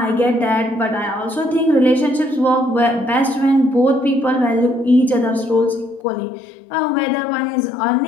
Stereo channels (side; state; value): right; drops out; at 6.0 s